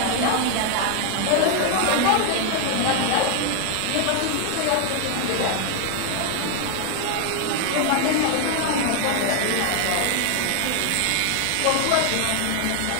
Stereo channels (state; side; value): different; both; correlation 0.01